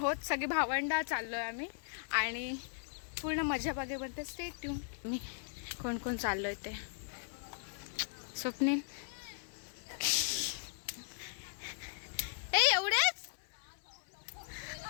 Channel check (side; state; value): right; silent; 53 dB below the other